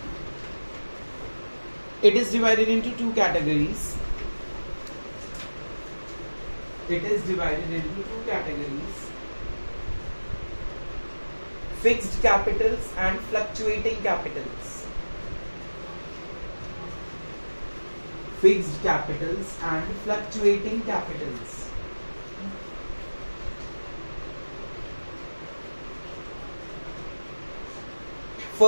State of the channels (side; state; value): both; inverted; correlation -1.00